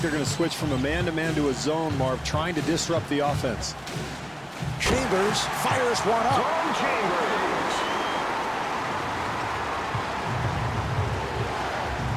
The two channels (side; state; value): both; identical; correlation 1.00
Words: they're going to switch from a man-to-man to a zone, Marv, trying to disrupt the offense. Chambers fires one up. Tom Chambers.